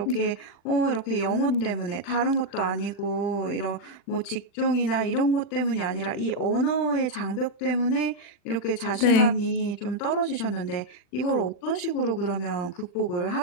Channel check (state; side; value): late; right; 40 ms